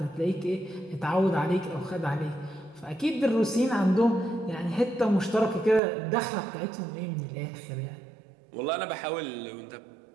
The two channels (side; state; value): left; drops out; at 5.8 s